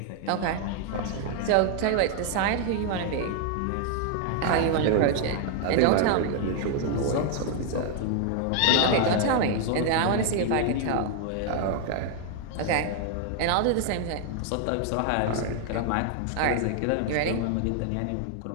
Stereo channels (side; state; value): both; different; correlation 0.00